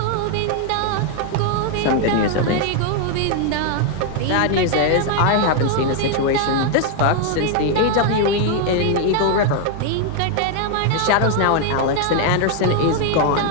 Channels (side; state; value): both; different; correlation 0.00